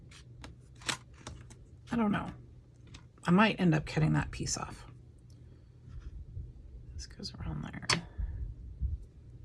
I don't know. I might end up cutting that piece off. This goes around there.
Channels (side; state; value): both; identical; correlation 1.00